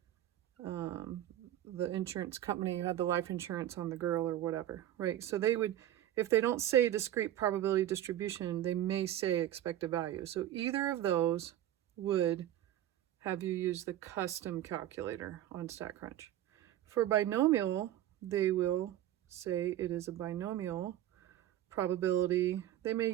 the insurance company had the life insurance on the girl or whatever, right? So they would, if they don't say discrete probability distribution, they may say expected value. So either of those would have you use the custom calculator on StatCrunch. For binomial, they will say it is a binomial probability. They may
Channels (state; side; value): quieter; left; 12.6 dB